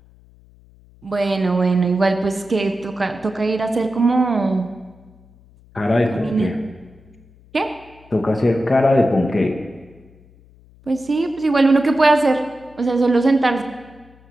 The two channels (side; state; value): left; noise; hum, 27 dB below the sound